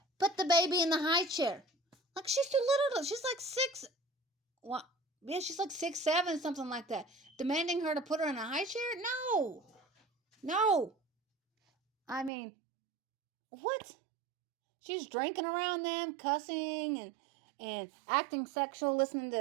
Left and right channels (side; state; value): left; drops out; at 12.3 s